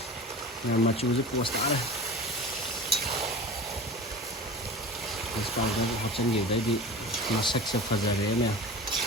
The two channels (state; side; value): normal; both; correlation 0.35